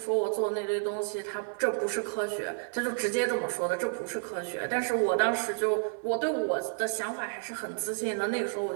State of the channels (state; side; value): silent; left; 57 dB below the other